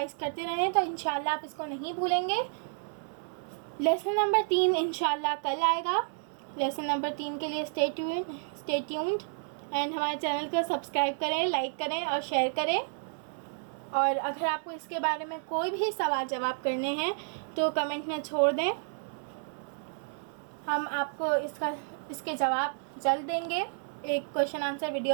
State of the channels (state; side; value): silent; left; 56 dB below the other